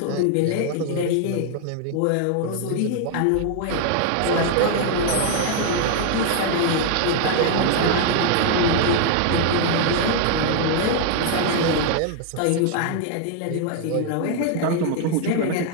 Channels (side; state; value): both; different; correlation 0.00